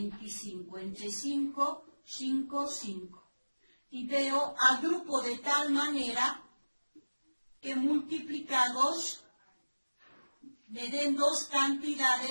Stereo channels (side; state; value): both; inverted; correlation -1.00